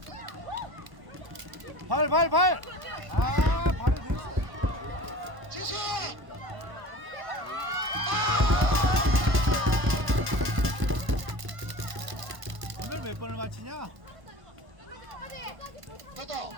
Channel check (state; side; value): late; left; 1.1 ms